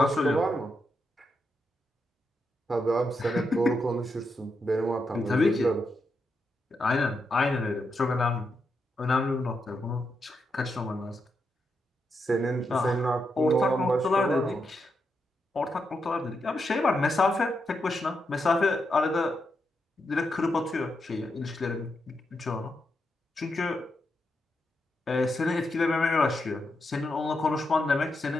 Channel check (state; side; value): normal; both; correlation 0.84